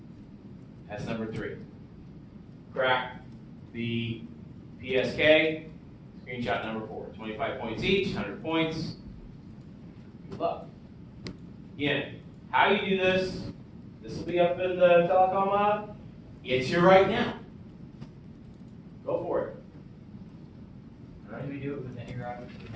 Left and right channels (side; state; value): both; identical; correlation 1.00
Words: That's number 3. Crack the PSK, screenshot number 4. 25 points each, 100 points. Good luck. Again, how you do this, this will be up in the telecom lab. It's here right now. Go for it. How do we do it with any router we